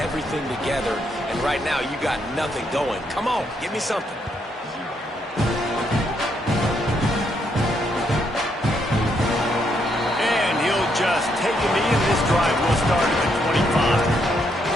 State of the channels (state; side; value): normal; both; correlation 0.76